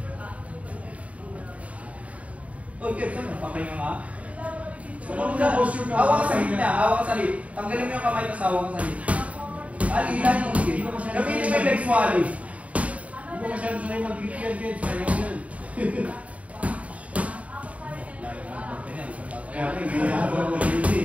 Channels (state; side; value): late; left; 0.067 ms